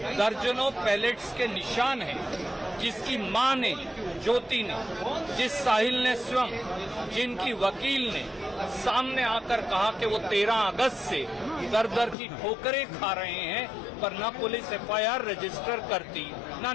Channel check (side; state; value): right; drops out; at 12.2 s